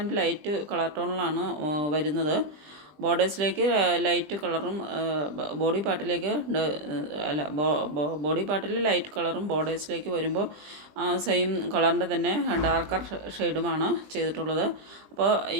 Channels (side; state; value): left; late; 20 ms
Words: ലൈറ്റ് കളർ ടോണിലാണ് വരുന്നത്. ബോർഡേഴ്സിലേക്ക് ലൈറ്റ് കളറും ബോഡി പാർട്ടിലേക്ക് ബോഡി പാർട്ടിൽ ലൈറ്റ് കളറും ബോർഡേഴ്സിലേക്ക് വരുമ്പോൾ സെയിം കളറിൻ്റെ തന്നെ ഡാർക്കർ ഷെയ്ഡുമാണ് ചെയ്തിട്ടുള്ളത്. അപ്പോൾ